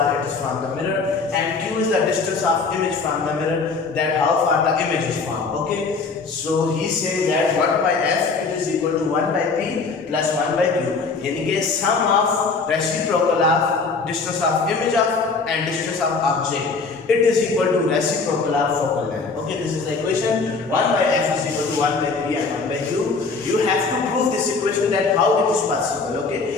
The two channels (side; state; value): right; quieter; 4.4 dB